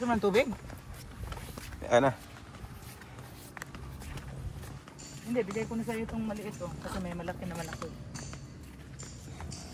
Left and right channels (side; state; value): both; identical; correlation 1.00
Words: man tubig? Ano? Hindi, bigay ko na sa iyo itong maliit oh, kasi may malaki na malaki.